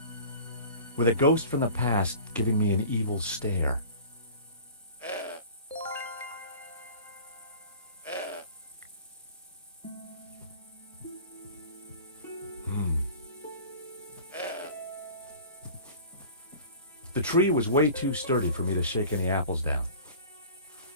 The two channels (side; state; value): both; inverted; correlation -0.42